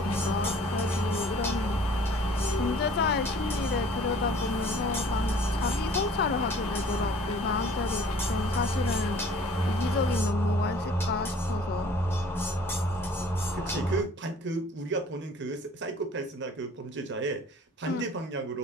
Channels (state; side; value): normal; both; correlation 0.52